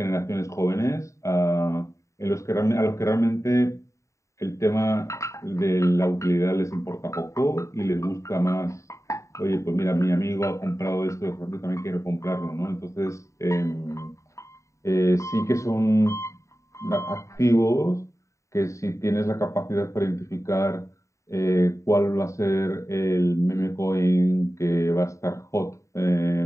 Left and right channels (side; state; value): right; late; 0.15 ms